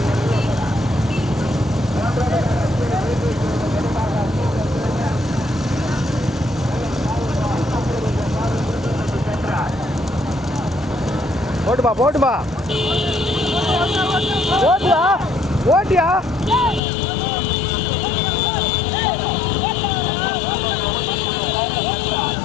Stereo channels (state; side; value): drops out; right; at 16.8 s